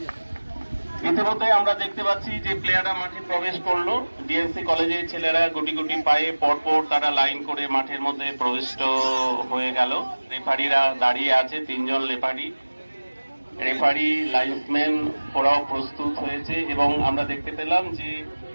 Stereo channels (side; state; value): both; inverted; correlation -1.00